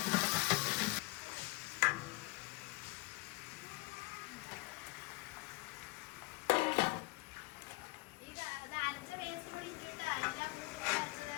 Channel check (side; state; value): right; quieter; 24.2 dB